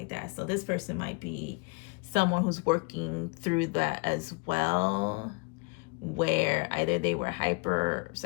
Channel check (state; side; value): quieter; right; 30.4 dB